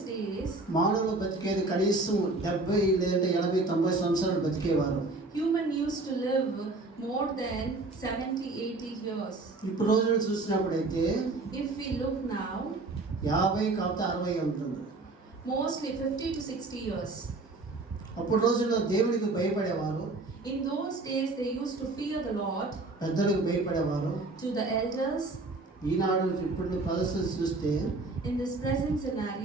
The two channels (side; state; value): left; quieter; 3.3 dB